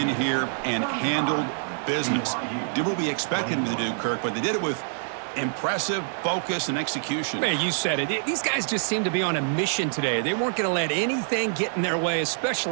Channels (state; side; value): silent; left; digital silence